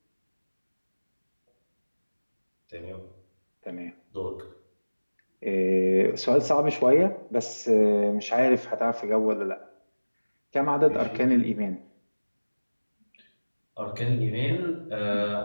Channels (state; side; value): inverted; both; correlation -1.00